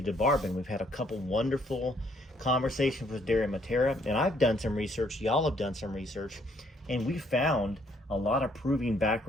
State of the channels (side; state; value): both; normal; correlation 0.67